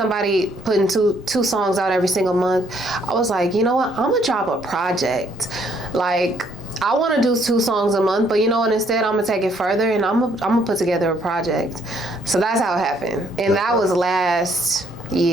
putting two songs out every single month, I was like, you know what? I'm gonna drop a project. I want to do 2 songs a month, but you know what? Instead, I'm gonna take it further and I'm gonna put together a project. So that's how it happened, and that was last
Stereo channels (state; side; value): normal; both; correlation 0.67